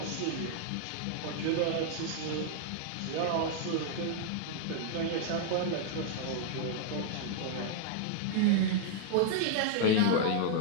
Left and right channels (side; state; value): both; different; correlation -0.01